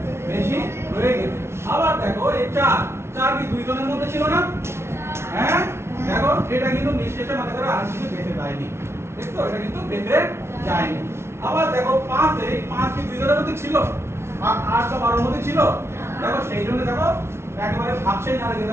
বেশি হয়ে গেছে। আবার দেখো এই 4 কি 2 জনের মধ্যে ছিল না, হ্যাঁ দেখো এটা কিন্তু নিঃশেষে মানে করে আর কিছু বেঁচে যায়নি, দেখছো এটা কিন্তু বেঁচে যায়নি। আবার দেখো 5 এই 5 কি 2 জনের মধ্যে ছিল, আর 8 বা 12 এর মধ্যে ছিল, দেখো সেই জন্য দেখো একেবারে ভাবছেই না রেখে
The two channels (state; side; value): late; left; 0.12 ms